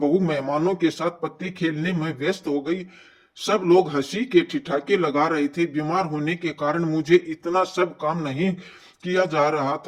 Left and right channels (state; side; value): identical; both; correlation 1.00